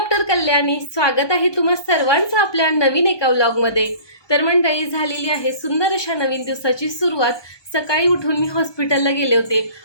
कल्याणी. स्वागत आहे तुम्हा सर्वांचं आपल्या नवीन एका व्लॉगमध्ये. तर मंडळी, झालेली आहे सुंदर अशा नवीन दिवसाची सुरुवात. सकाळी उठून मी हॉस्पिटलला गेले होते.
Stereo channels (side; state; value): right; late; 1.2 ms